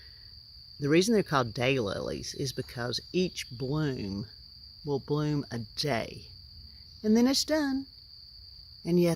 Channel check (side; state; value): both; identical; correlation 1.00